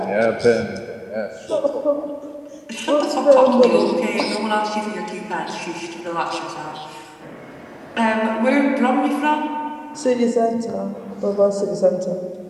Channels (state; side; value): identical; both; correlation 1.00